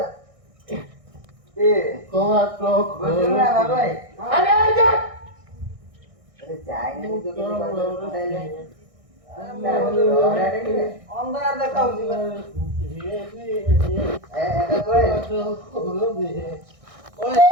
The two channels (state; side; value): late; left; 1.6 ms